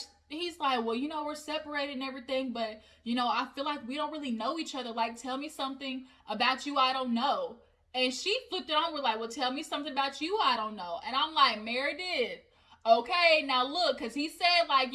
well, we're separated and everything, but, I feel like we don't really know each other. Like, tell me something about you I don't know. And she flipped it on. We're like, well, tell me something about you I don't know. And I'm like, Meredith, okay, now look, because he said, like,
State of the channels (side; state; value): both; identical; correlation 1.00